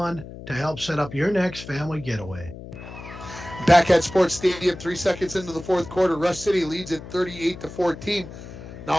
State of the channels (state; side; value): noise; left; hum, 13 dB below the sound